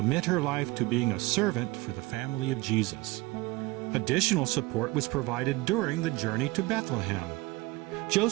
her life to being a servant for the family of Jesus. Additional support was provided during the journey to Bethlehem.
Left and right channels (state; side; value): quieter; left; 21.4 dB